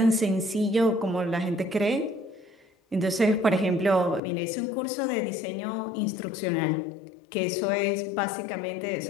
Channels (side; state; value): right; drops out; at 4.2 s